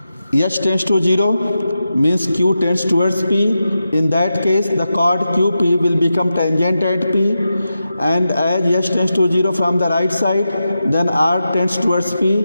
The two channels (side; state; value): both; inverted; correlation -0.90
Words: H tends to 0 means Q tends towards P. In that case, the chord QP will become tangent at P, and as H tends to 0 from the right side, then R tends towards P